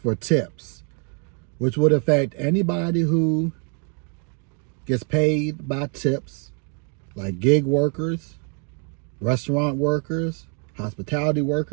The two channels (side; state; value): left; quieter; 39.8 dB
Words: tips, which would affect anybody who gets paid by tips, like gig workers, restaurant workers, hospitality